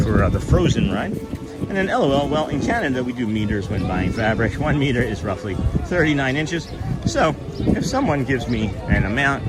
the Frozen ride. And then LOL, well, in Canada we do meters when buying fabric. 1 meter is roughly 39 inches. So if someone gives me an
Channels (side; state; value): both; identical; correlation 1.00